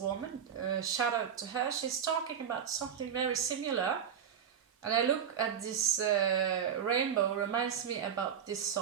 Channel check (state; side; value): quieter; left; 8.2 dB